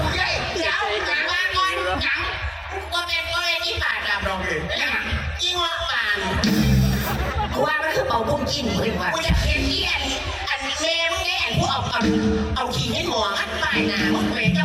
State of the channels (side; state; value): both; identical; correlation 1.00